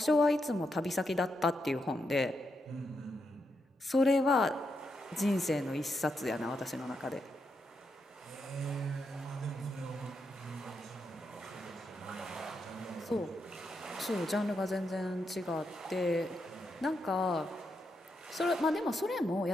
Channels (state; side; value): normal; both; correlation 0.83